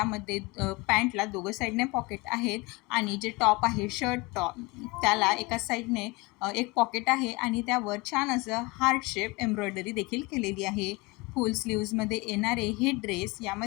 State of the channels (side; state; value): right; quieter; 24.8 dB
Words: पॅन्टला दोघं साईडने पॉकेट आहेत आणि जे टॉप आहे शर्ट टॉप त्याला एका साईडने एक पॉकेट आहे आणि त्यावर छान असं हार्ट शेप एम्ब्रॉयडरी देखील केलेली आहे. फुल स्लीव्जमध्ये येणारे हे ड्रेस